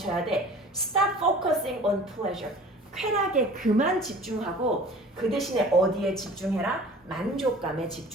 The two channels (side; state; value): both; normal; correlation 0.44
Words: 돼? Stop focusing on pleasure. 쾌락에 그만 집중하고 그 대신에 어디에 집중해라? 만족감에